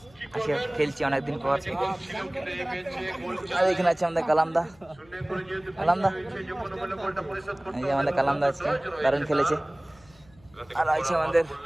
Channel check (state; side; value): noise; left; hum, 28 dB below the sound